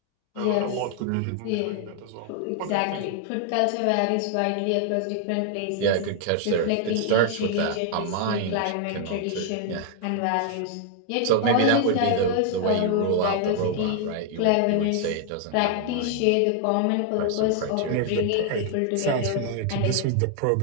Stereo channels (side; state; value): both; different; correlation 0.00